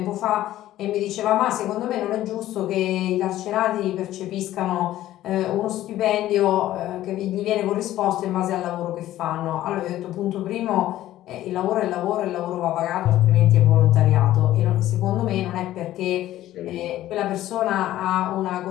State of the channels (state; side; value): quieter; right; 14.0 dB